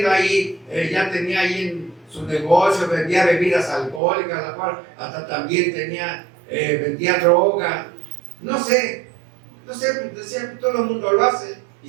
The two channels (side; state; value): left; drops out; at 4.0 s